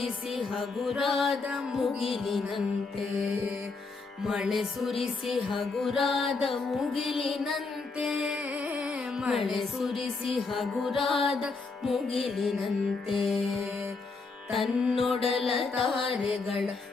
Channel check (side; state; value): right; quieter; 4.1 dB